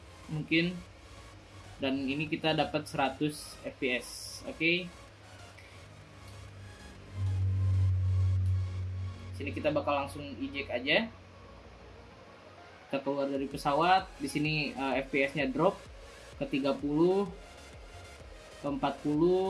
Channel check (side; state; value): both; identical; correlation 1.00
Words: mungkin. Dan ini kita dapat 100 fps. Oke. Sini kita bakal langsung eject aja. Kita keluar dari pesawat. Di sini FPS-nya drop ke 30, ke